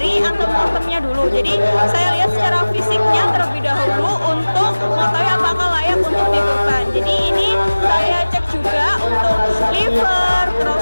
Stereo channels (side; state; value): both; inverted; correlation -1.00